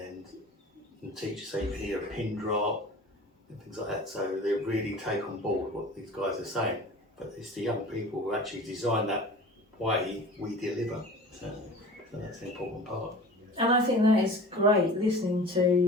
teachers say you can hear a pin drop and things like that. So they really take on board what these guys are saying. But it's the young people who actually design that way we deliver. So that's the important part. And I think that is great, listening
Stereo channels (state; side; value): normal; both; correlation 0.40